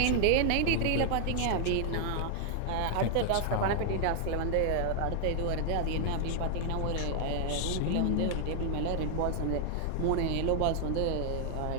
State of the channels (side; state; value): both; different; correlation -0.01